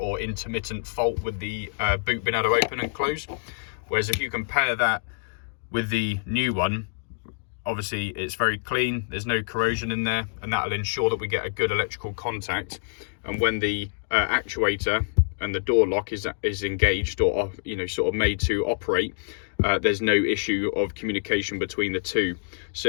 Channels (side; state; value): right; silent; digital silence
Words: intermittent fault with the boot being able to open and close. Whereas if you compare that with the new one, obviously it's very clean, there's no corrosion in there, and that will ensure that we get a good electrical contact. And when the actuator and the door lock is engaged, or sort of made to operate, there's no issue of communication between the two. So